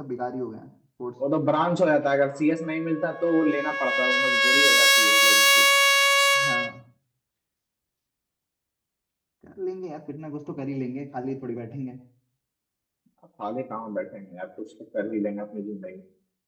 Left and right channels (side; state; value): both; identical; correlation 1.00